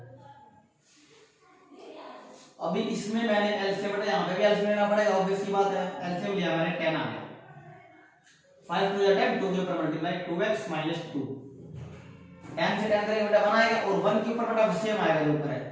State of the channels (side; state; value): both; identical; correlation 1.00